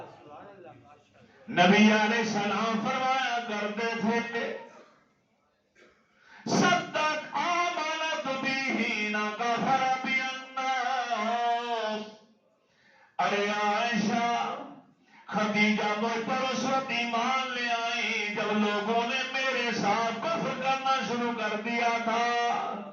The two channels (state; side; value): identical; both; correlation 1.00